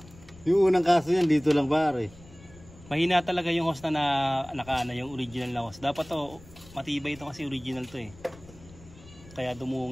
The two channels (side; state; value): left; noise; rumble, 22 dB below the sound